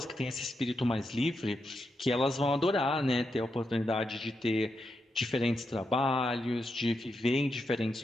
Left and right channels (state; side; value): normal; both; correlation 0.85